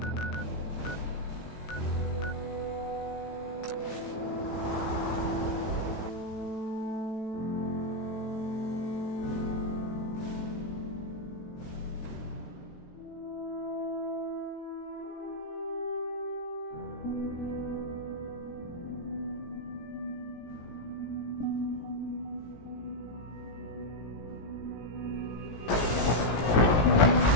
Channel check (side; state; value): right; late; 17 ms